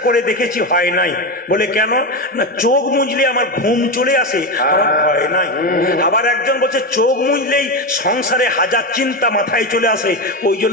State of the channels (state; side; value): normal; both; correlation 0.15